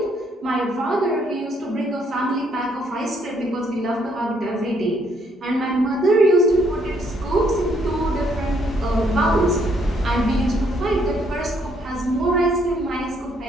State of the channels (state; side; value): normal; both; correlation 0.69